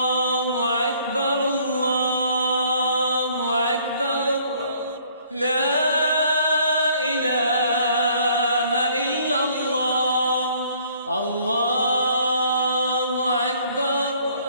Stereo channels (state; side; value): inverted; both; correlation -0.60